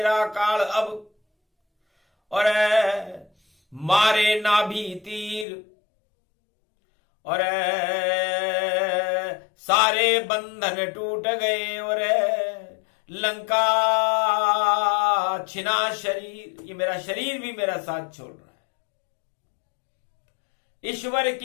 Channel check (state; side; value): drops out; right; at 5.5 s